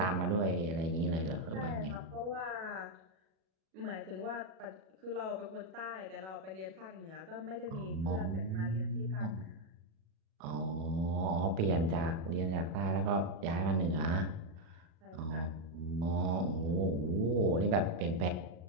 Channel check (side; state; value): left; late; 38 ms